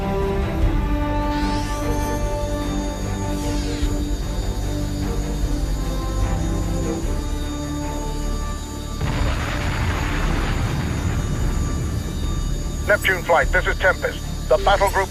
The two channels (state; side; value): identical; both; correlation 1.00